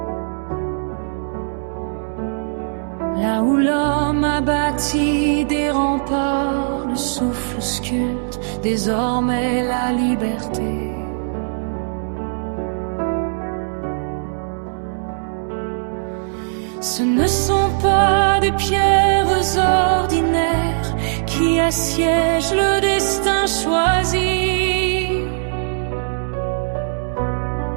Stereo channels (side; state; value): left; silent; digital silence